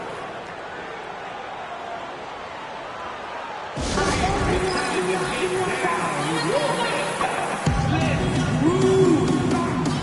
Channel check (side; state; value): both; identical; correlation 1.00